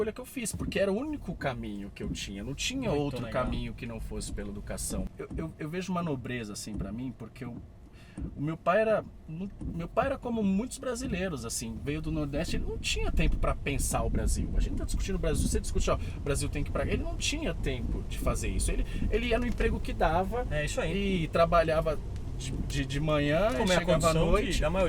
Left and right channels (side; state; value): both; identical; correlation 1.00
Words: que eu fiz, porque era o único caminho que eu tinha, não tinha Muito outro legal. caminho que não fosse pela educação. Eu vejo uma nobreza assim pra mim, porque o meu pai era como muitos brasileiros, assim, veio do Nordeste, ele não tinha tempo pra pensar o Brasil. A gente tá discutindo o Brasil, você discute, ó, o Brasil tem que ir pra... Ele não tinha tempo de fazer isso, ele ia no emprego que dava, isso aí. E trabalhava de manhã Como e é a chegava à condição noite, da